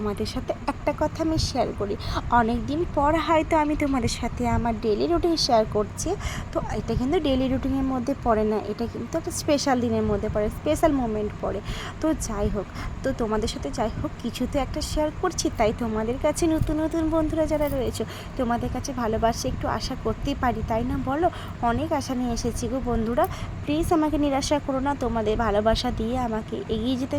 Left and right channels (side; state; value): both; identical; correlation 1.00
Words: সাথে একটা কথা আমি শেয়ার করি, অনেক দিন পর হয়তো আমি তোমাদের সাথে আমার ডেলি রুটিন শেয়ার করছি। তো এটা কিন্তু ডেলি রুটিনের মধ্যে পড়ে না, এটা কিন্তু একটা স্পেশাল দিনের মধ্যে পড়ে, স্পেশাল মোমেন্ট পড়ে। তো যাই হোক, তো তোমাদের সাথে যাই হোক কিছু তো একটা শেয়ার করছি, তাই তোমাদের কাছে নতুন নতুন বন্ধুরা যারা রয়েছে তোমাদের কাছে ভালোবাসা একটু আশা করতেই পারি, তাই না বলো? অনেক আশা নিয়ে এসেছি গো বন্ধুরা, প্লিজ আমাকে নিরাশা করো না। তোমাদের ভালোবাসা দিয়ে আমাকে এগিয়ে যেতে